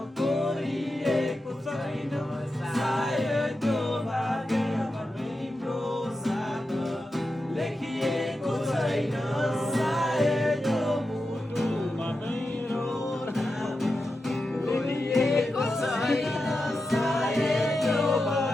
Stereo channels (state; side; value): normal; both; correlation 0.90